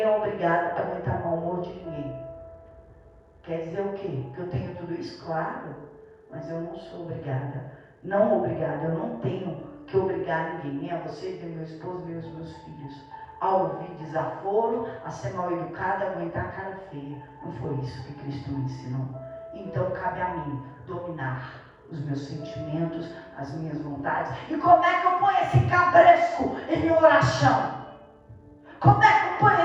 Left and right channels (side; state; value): both; identical; correlation 1.00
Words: é obrigado a aguentar mau humor de ninguém. Quer dizer o quê? Que eu tenho tudo isso? Claro. Mas eu não sou obrigada. Não obrigada. Eu não tenho que obrigar ninguém. Nem a você, nem meu esposo, nem os meus filhos. A ouvir desaforo, a ser mal educada, a aguentar a cara feia. Não foi isso que Cristo me ensinou. Então cabe a mim dominar os meus sentimentos, as minhas vontades. E como é que eu ponho esse cabresco em minha oração? Como é que eu ponho